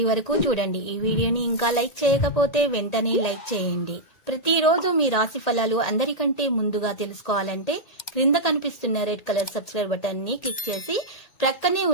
వరకు చూడండి. ఈ వీడియోని ఇంకా లైక్ చేయకపోతే వెంటనే లైక్ చేయండి. ప్రతిరోజు మీ రాశి ఫలాలు అందరికంటే ముందుగా తెలుసుకోవాలంటే క్రింద కనిపిస్తున్న రెడ్ కలర్ సబ్స్క్రైబ్ బటన్ ని క్లిక్ చేసి ప్రక్కనే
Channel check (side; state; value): right; late; 1.8 ms